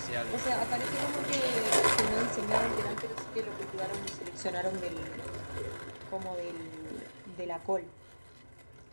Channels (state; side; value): inverted; both; correlation -1.00